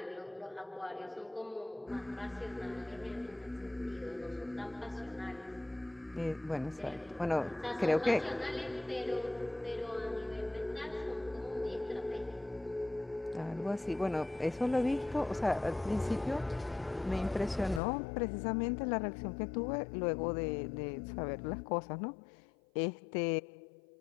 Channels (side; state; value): right; drops out; at 17.8 s